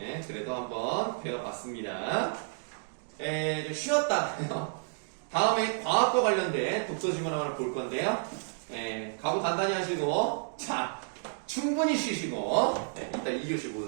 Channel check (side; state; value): left; silent; digital silence